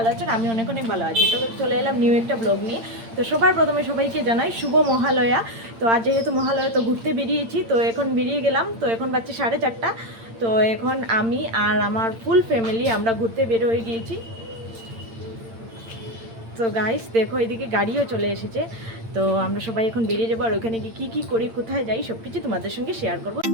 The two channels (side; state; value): left; late; 8.8 ms